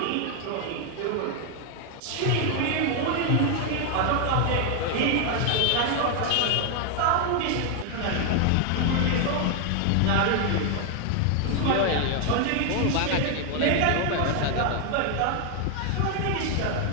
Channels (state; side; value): different; both; correlation 0.00